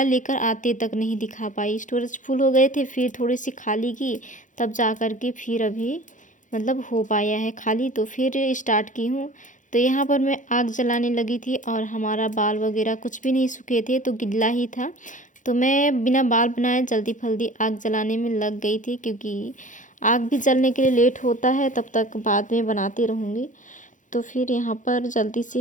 लेकर आते तक नहीं दिखा पाई, स्टोरेज फुल हो गए थे। फिर थोड़ी सी खाली की तब जा कर के फिर अभी मतलब हो पाया है खाली, तो फिर स्टार्ट की हूँ। तो यहाँ पर मैं आग जलाने लगी थी, और हमारा बाल वगैरह कुछ भी नहीं सूखे थे तो गिल्ला ही था, तो मैं बिना बाल बनाए जल्दी फल्दी आग जलाने में लग गई थी, क्योंकि आग भी जलने के लिए लेट होता है, तब तक बाद में बनाती रहूँगी। तो फिर यहाँ पर जल्दी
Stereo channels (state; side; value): late; right; 0.37 ms